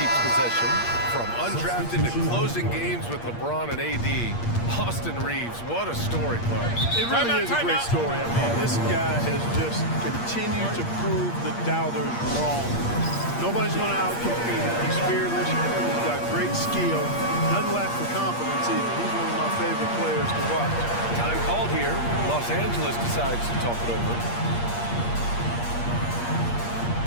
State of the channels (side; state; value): right; late; 8.5 ms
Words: possession. From undrafted to closing games with LeBron and AD. Austin Reeves, what a story, Clark. It really is a great story. I mean, this guy has just continued to prove the doubters wrong. Nobody's going to outcompete him. He's fearless. He's got great skill. Doesn't lack for confidence either. He's one of my favorite players to watch. Time called here. Los Angeles decides to talk it over.